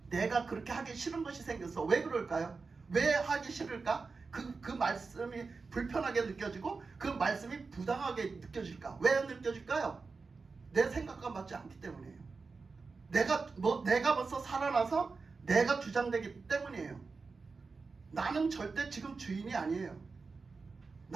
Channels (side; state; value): left; quieter; 4.4 dB